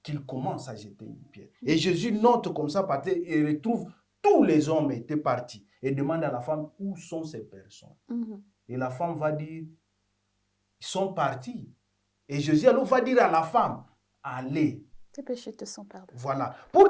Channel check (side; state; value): both; identical; correlation 1.00